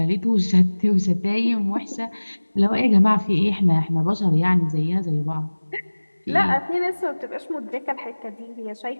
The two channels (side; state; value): both; inverted; correlation -1.00